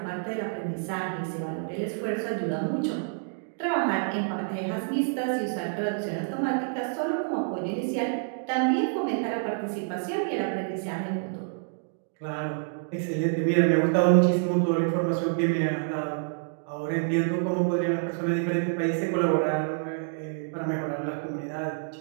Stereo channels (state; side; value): silent; left; digital silence